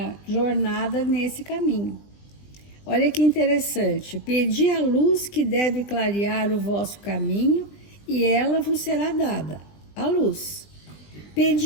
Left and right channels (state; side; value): late; right; 20 ms